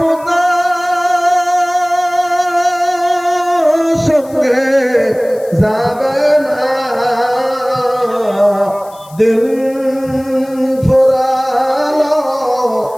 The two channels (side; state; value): left; noise; hiss, 24 dB below the sound